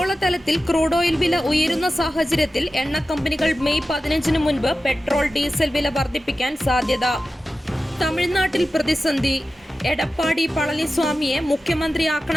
ക്രൂഡ് ഓയിൽ വില ഉയരുന്ന സാഹചര്യത്തിൽ എണ്ണ കമ്പനികൾ മെയ് 15 മുൻപ് പെട്രോൾ, ഡീസൽ വില വർദ്ധിപ്പിക്കാൻ സാധ്യത. തമിഴ്നാട്ടിൽ പ്രതിസന്ധി. എടപ്പാടി പളനിസ്വാമിയെ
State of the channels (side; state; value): both; normal; correlation 0.93